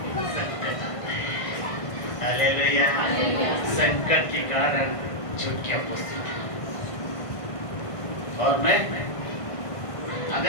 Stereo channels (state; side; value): late; right; 1.5 ms